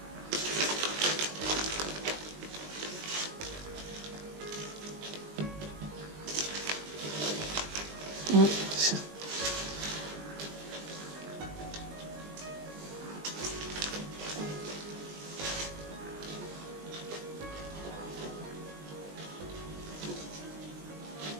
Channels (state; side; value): late; left; 20 ms